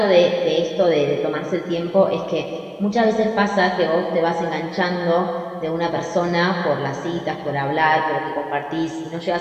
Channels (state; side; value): identical; both; correlation 1.00